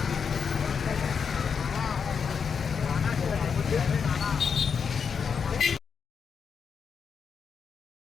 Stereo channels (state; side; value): quieter; right; 6.3 dB